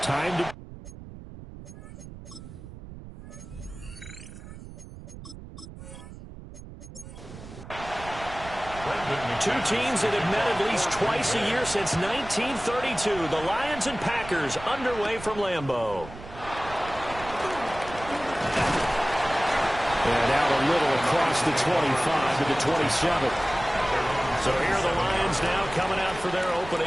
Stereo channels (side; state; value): right; noise; rumble, 14 dB below the sound